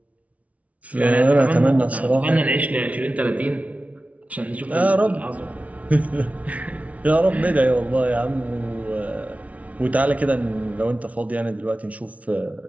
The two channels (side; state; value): left; late; 0.067 ms